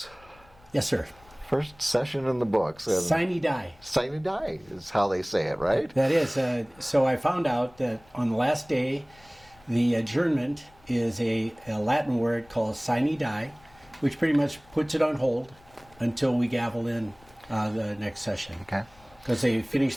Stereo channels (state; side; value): noise; left; rumble, 27 dB below the sound